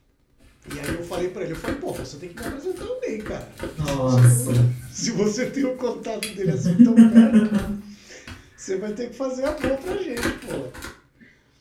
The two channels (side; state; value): both; identical; correlation 1.00